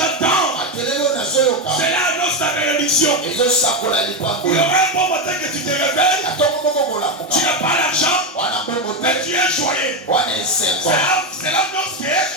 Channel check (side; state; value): both; normal; correlation 0.10